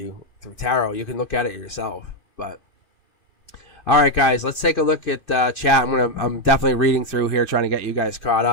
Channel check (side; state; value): right; late; 2.6 ms